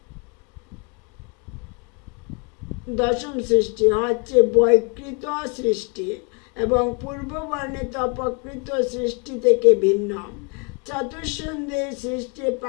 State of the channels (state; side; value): quieter; right; 35.0 dB